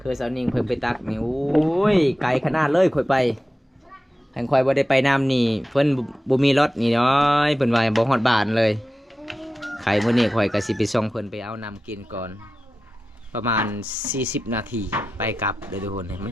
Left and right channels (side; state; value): both; normal; correlation 0.93